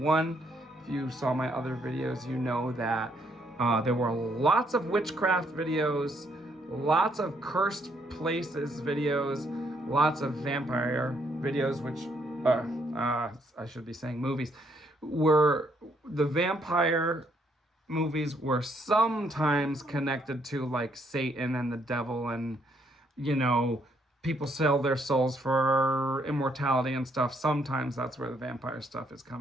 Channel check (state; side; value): normal; both; correlation 0.71